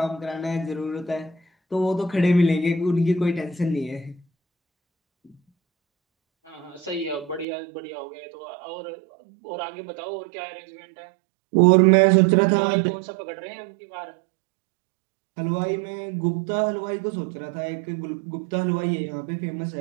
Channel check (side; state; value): left; drops out; at 7.5 s